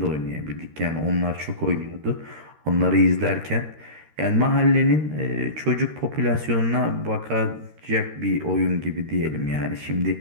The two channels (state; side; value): late; left; 13 ms